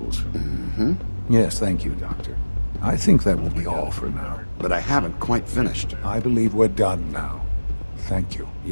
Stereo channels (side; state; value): both; inverted; correlation -1.00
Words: Mm-hmm. Yes, thank you, Doctor. I think that will be all for now. But I haven't quite finished. I believe we're done now. Thank you.